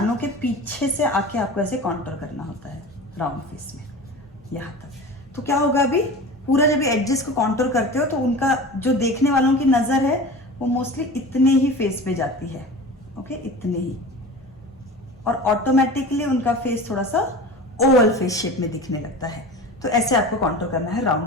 के पीछे से आके आपको ऐसे कॉन्टोर करना होता है राउंड फेस में यहाँ तक। तो क्या होगा, अभी पूरा जब एडजेस को कॉन्टोर करते हो तो उनका जो देखने वालों की नजर है वो मोस्टली इतने ही फेस पे जाती है, ओके, इतने ही, और ऑटोमेटिकली उनका फेस थोड़ा सा ओवल फेस शेप में दिखने लगता है। तो ऐसे आपको कॉन्टोर करना है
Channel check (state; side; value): normal; both; correlation 0.34